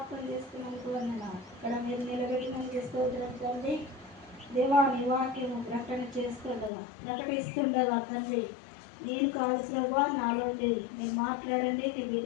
చేసుకున్నందుకు వందనాలు. ఇక్కడ మీరు నిలబెట్టినందుకు స్తోత్రం తండ్రి. దేవాని వాక్యము ప్రకటిస్తుండగా తండ్రి, నేను కాదు ప్రభా, నాలో లేదు. మీరు మాట్లాడండి, నీ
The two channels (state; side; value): drops out; right; at 6.7 s